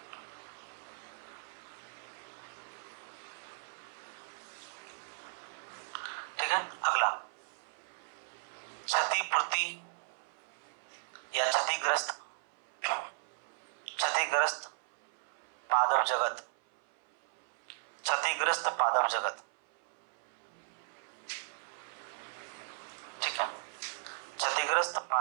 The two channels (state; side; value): silent; left; 54 dB below the other